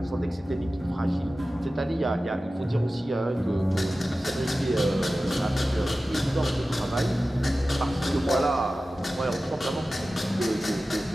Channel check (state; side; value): normal; both; correlation 0.95